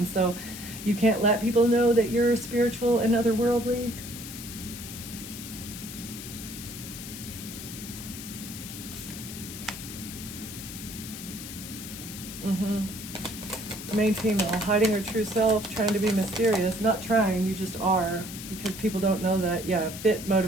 so you can't let people know that you're spiritual and otherworldly. Main female, hiding her true self, trying to be mysterious. Not trying, you just are, because people don't know that. Yeah, fit,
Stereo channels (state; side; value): noise; left; hiss, 11 dB below the sound